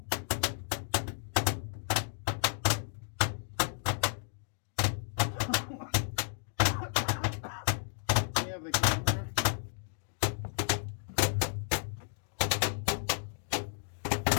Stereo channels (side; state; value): right; silent; digital silence